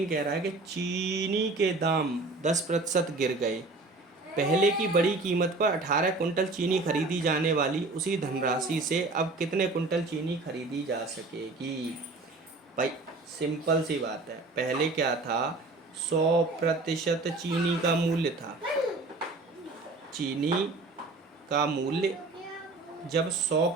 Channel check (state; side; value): quieter; left; 3.4 dB